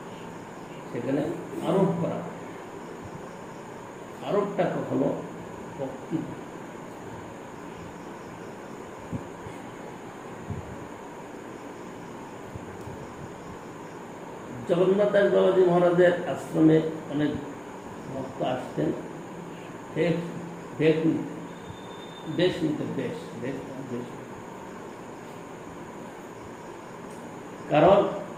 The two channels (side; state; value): right; noise; rumble, 27 dB below the sound